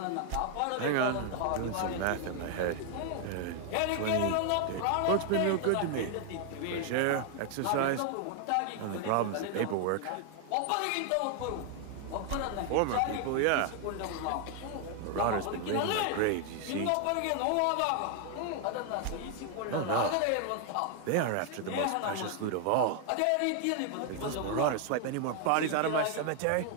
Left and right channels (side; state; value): both; different; correlation 0.00